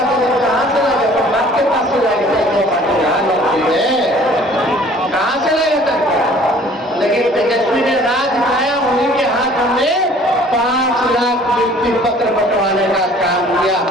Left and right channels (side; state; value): both; normal; correlation 0.53